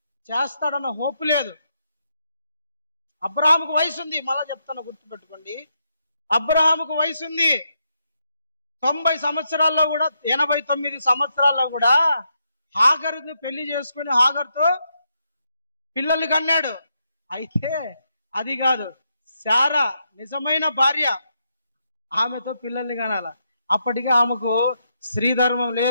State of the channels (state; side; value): inverted; both; correlation -0.81